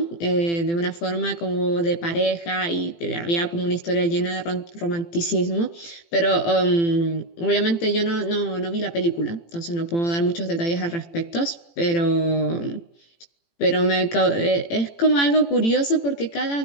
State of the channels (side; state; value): right; late; 18 ms